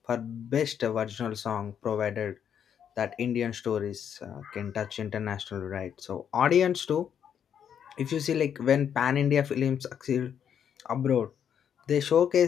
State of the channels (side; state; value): right; quieter; 8.5 dB